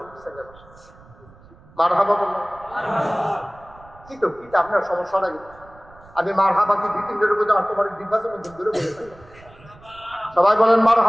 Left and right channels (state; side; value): noise; right; rumble, 24 dB below the sound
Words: ছেলে। মারহাবা বললাম কি তো কি আপনার সমস্যা নাই, আমি মারহাবা কি 2-3 দিনের মধ্যে তোমার দিবাসের মধ্যে দূরে বলে থাকি। সবাই বলেন